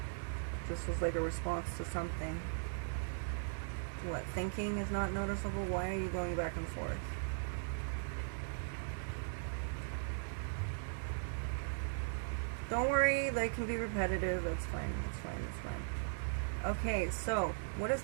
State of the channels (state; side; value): silent; left; digital silence